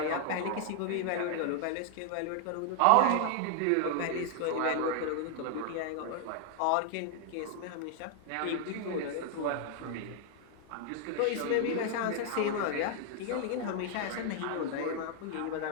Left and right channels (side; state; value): both; different; correlation 0.00